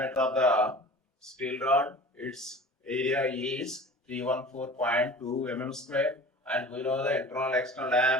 of the steel rod, its area is 314.2 mm square, and we know the internal external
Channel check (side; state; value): both; normal; correlation 0.41